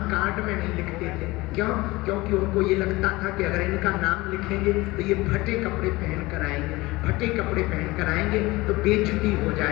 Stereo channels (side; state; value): right; quieter; 21.0 dB